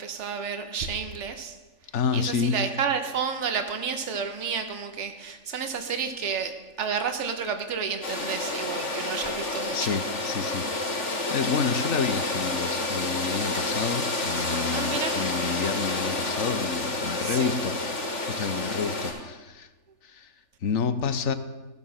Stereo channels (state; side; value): late; right; 3.4 ms